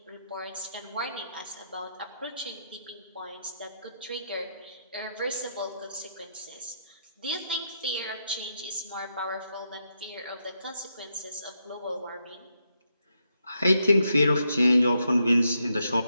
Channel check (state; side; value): inverted; both; correlation -0.81